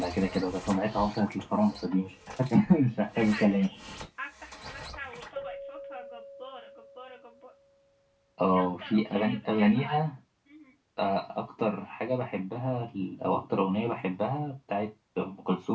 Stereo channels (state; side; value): identical; both; correlation 1.00